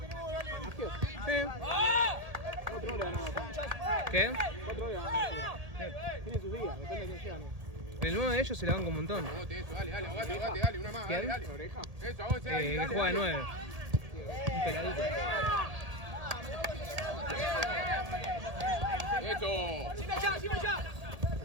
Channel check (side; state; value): left; late; 1.7 ms